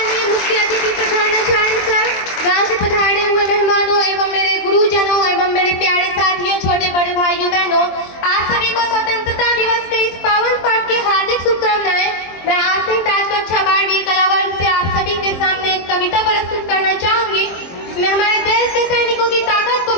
मुख्य अतिथि प्रधानाचार्य सर, गांव से पधारे हुए मेहमानों एवं मेरे गुरुजनों एवं मेरे प्यारे साथियों, छोटे बड़े भाइयों बहनों, आप सभी को स्वतंत्रता दिवस के इस पावन पर्व की हार्दिक शुभकामनाएं। मैं आज ताज कक्षा 12वीं कला वर्ग से आप सभी के सामने एक कविता प्रस्तुत करना चाहूंगी। इसमें हमारे देश के सैनिकों की ताकत को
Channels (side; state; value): right; late; 23 ms